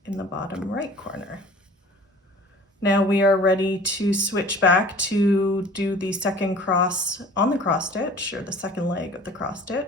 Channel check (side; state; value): both; normal; correlation 0.46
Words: in the bottom right corner. Now we are ready to switch back to do the second cross on the cross stitch, or the second leg of the cross